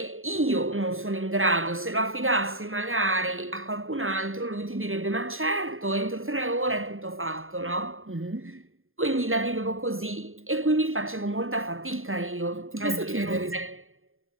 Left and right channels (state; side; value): late; left; 0.60 ms